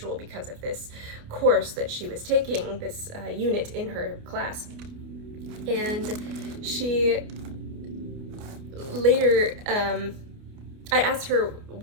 because of this course that she was taking, this unit in her class. And she later, I asked her,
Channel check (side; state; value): left; late; 29 ms